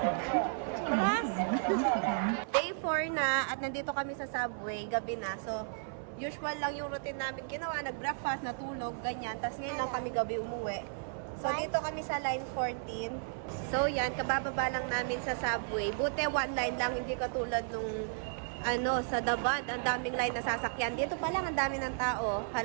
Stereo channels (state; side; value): silent; left; 55 dB below the other